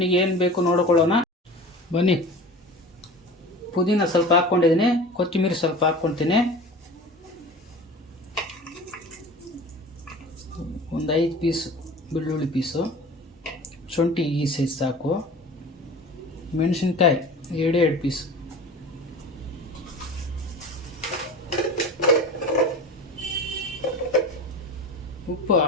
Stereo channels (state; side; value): normal; both; correlation 0.37